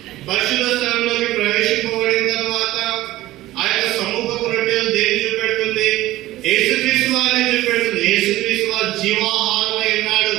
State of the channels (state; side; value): quieter; left; 16.3 dB